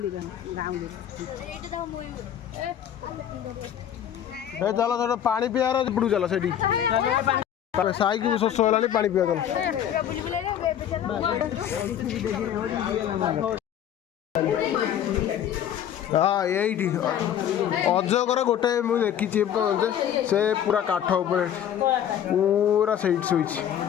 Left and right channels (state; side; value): quieter; right; 10.0 dB